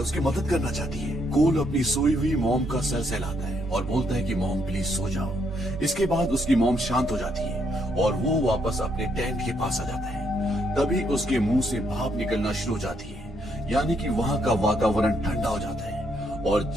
मदद करना चाहती है। कोल अपनी सोई हुई मॉम का सर सहलाता है और बोलता है कि मॉम प्लीज सो जाओ। इसके बाद उसकी मॉम शांत हो जाती है और वो वापस अपने टेंट के पास आ जाता है। तभी उसके मुंह से भाप निकलना शुरू हो जाती है, यानी कि वहाँ का वातावरण ठंडा हो जाता है और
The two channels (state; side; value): normal; both; correlation 0.74